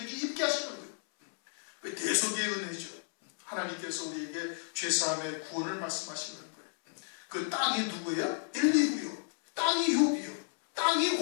입게 하시는 거예요. 대속의 은혜죠. 하나님께서 우리에게 죄사함의 구원을 말씀하시는 거예요. 그 땅이 누구예요? 엘리후요. 땅이 욥이요. 땅이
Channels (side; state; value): right; silent; 56 dB below the other